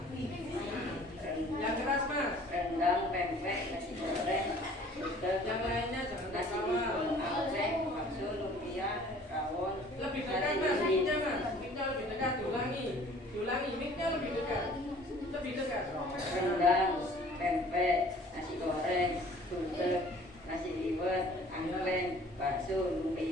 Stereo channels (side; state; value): both; normal; correlation 0.52